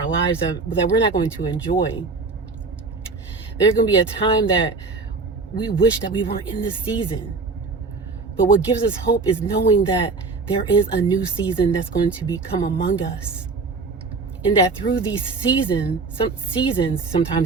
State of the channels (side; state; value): left; quieter; 4.1 dB